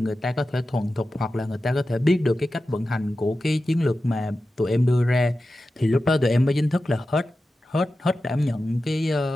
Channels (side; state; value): both; normal; correlation 0.93